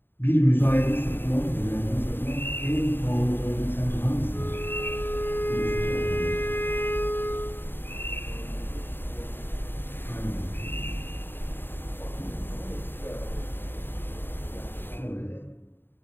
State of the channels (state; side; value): late; right; 0.099 ms